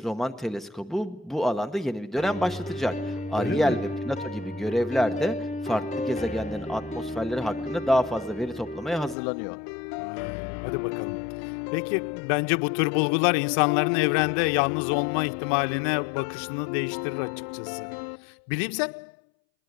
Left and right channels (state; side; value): drops out; right; at 9.2 s